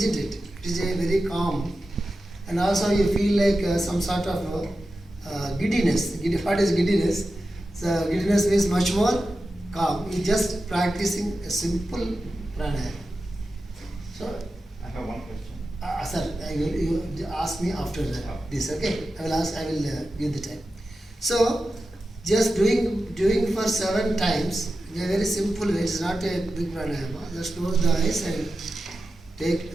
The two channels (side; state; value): both; normal; correlation 0.92